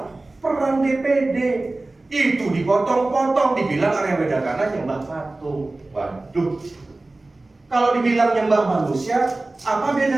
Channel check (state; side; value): quieter; left; 3.0 dB